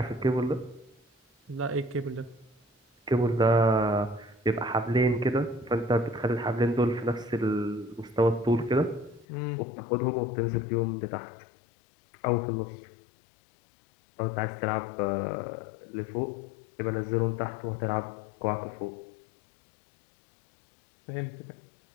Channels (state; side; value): drops out; right; at 9.2 s